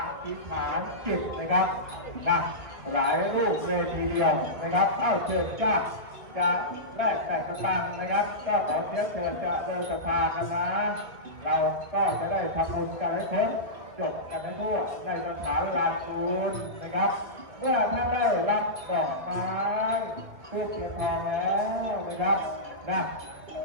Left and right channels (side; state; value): left; late; 2.1 ms